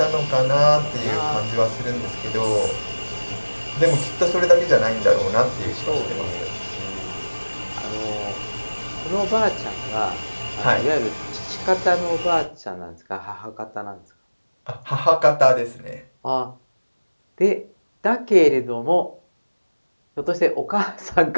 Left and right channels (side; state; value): both; inverted; correlation -1.00